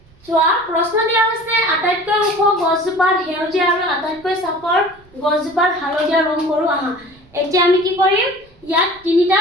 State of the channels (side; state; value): right; noise; rumble, 29 dB below the sound